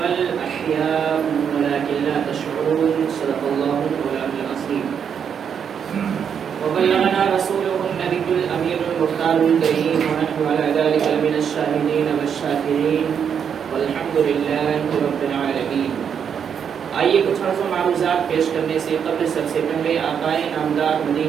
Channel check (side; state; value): left; quieter; 7.6 dB